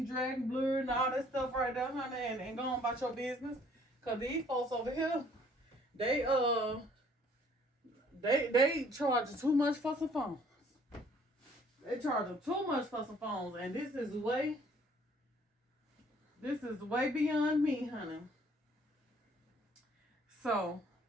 dragging, blurred, and all that stuff right there, honey, and go on about your business. Cause these folks over here, they charge too much for some phones. They charge too much for some phones, and this is way beyond me, honey. So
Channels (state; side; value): normal; both; correlation 0.59